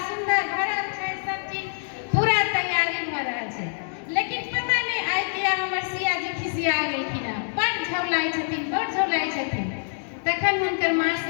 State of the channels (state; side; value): silent; right; digital silence